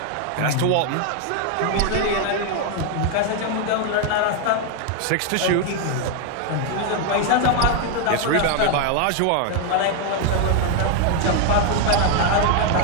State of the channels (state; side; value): different; both; correlation 0.01